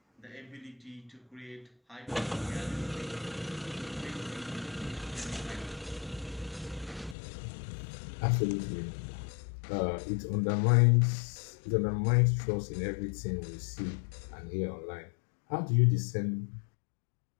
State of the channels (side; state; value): right; drops out; at 7.2 s